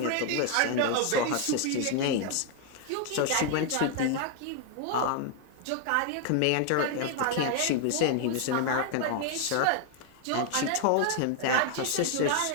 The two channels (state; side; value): different; both; correlation 0.00